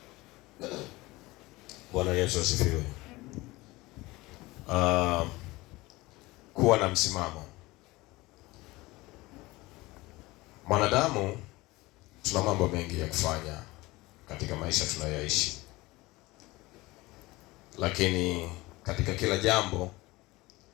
Bwana Yesu asifiwe. Kuwa na msimamo. Mwanadamu tuna mambo mengi ya kufanya katika maisha tunayoishi, lakini katika kila jambo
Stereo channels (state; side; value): quieter; right; 20.9 dB